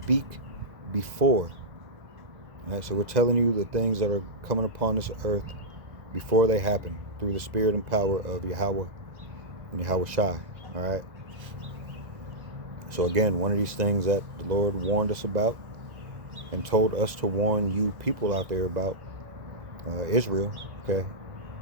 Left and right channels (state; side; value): late; left; 2.0 ms